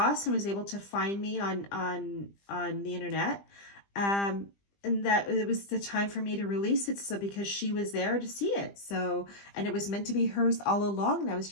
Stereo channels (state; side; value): late; right; 20 ms